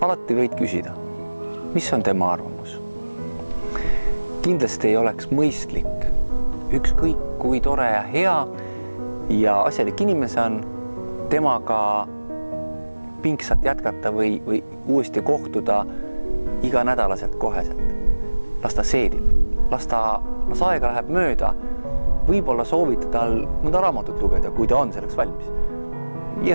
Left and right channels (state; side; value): inverted; both; correlation -1.00